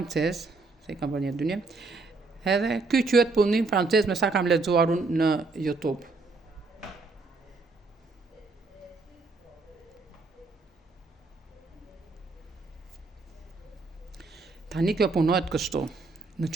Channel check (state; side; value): quieter; left; 3.7 dB